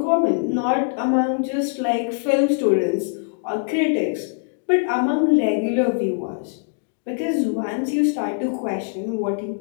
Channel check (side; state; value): right; silent; digital silence